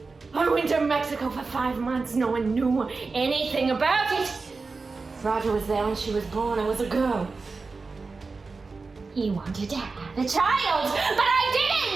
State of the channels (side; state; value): left; quieter; 4.1 dB